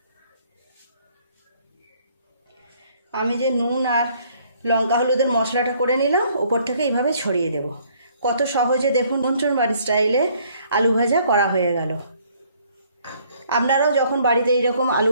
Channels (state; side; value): inverted; both; correlation -0.63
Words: আমি যে নুন আর লঙ্কা হলুদের মশলাটা করে নিলাম, ওপর থেকে এইভাবে ছড়িয়ে দেব। কত সহজে দেখুন নিমন্ত্রণ বাড়ির স্টাইলে আলু ভাজা করা হয়ে গেল। আপনারাও যখন বাড়িতে এইরকম আলু